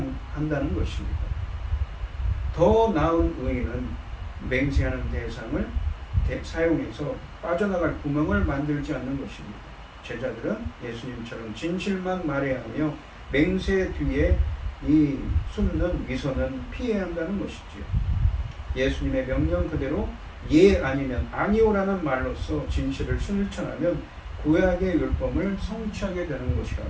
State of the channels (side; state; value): both; identical; correlation 1.00